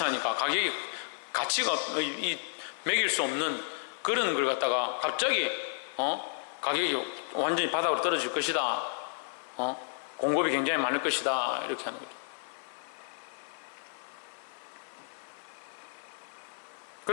가격이 가치가 매길 수 없는 그런 걸 갖다가 갑자기 가격이 완전히 바닥으로 떨어질 것이다. 공급이 굉장히 많을 것이다. 이렇게 하는 거죠.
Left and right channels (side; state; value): right; silent; 56 dB below the other